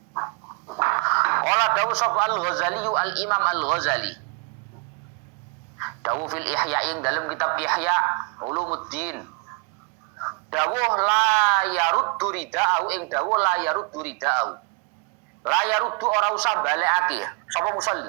Qala dawu sapa Al-Ghazali Al-Imam Al-Ghazali dawuh fil Ihya ing dalam kitab Ihya Ulumuddin dawuh la yaruddu rida'u ing dawuh la yaruddu rida'u. La yaruddu ora usah balekake sapa musalli.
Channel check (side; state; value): left; quieter; 34.5 dB